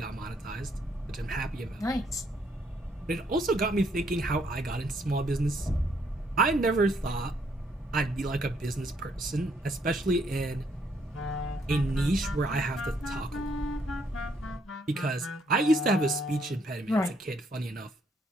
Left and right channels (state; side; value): normal; both; correlation 0.70